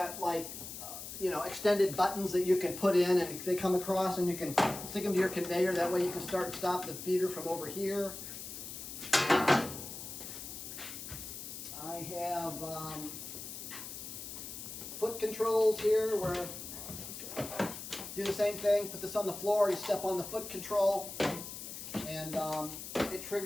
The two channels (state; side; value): noise; left; hiss, 9 dB below the sound